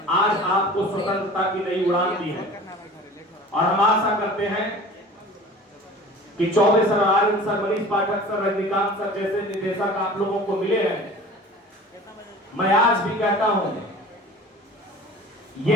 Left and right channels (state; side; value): normal; both; correlation 0.41